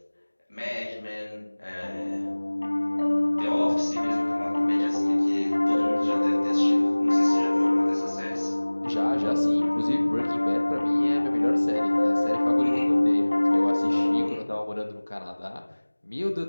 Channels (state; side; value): inverted; both; correlation -1.00